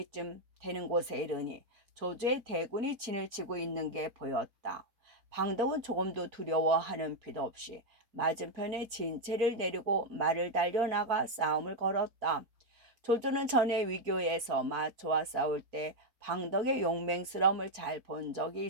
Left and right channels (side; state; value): left; late; 4.3 ms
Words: 되는 곳에 이르니 조조의 대군이 진을 치고 있는 게 보였다. 방덕은 조금도 두려워하는 필요 없이 맞은편에 진체를 내리고 말을 달려나가 싸움을 걸었다. 조조는 전에 위교에서 마초와 싸울 때 방덕의 용맹스러움을 잘 본 적이